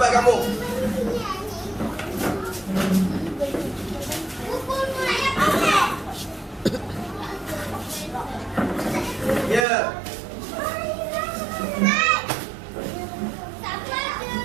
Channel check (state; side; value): drops out; left; at 9.7 s